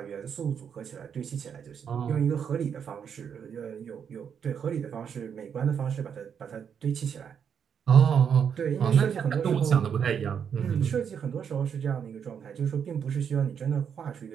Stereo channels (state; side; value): quieter; left; 7.6 dB